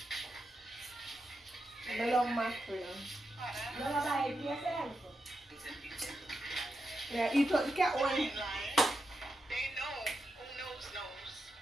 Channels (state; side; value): normal; both; correlation 0.86